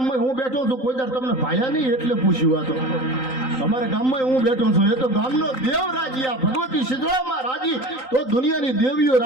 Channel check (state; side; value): late; right; 3.9 ms